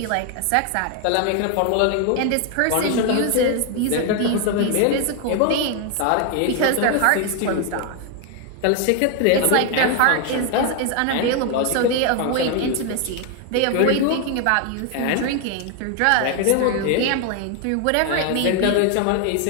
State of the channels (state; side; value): different; both; correlation 0.00